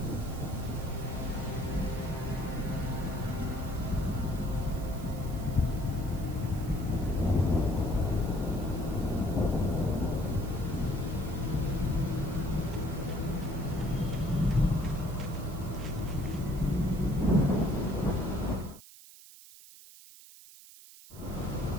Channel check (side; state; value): right; noise; hiss, 19 dB below the sound